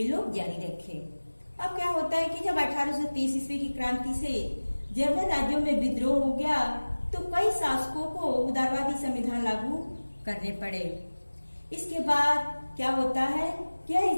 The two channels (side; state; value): both; inverted; correlation -1.00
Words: लोग जारी रखे। अब क्या होता है कि जब 1830 ईस्वी की क्रांति से जर्मन राज्यों में विद्रोह हो गया तो कई शासकों को उदारवादी संविधान लागू करने पड़े। इसके बाद क्या होता है, यह